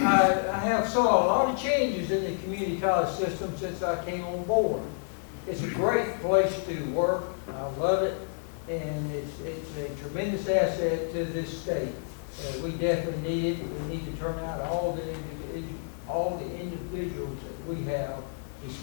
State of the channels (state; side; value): silent; right; 58 dB below the other